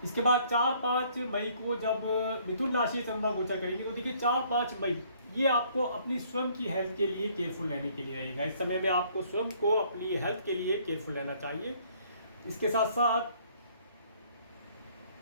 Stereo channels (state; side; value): inverted; both; correlation -0.61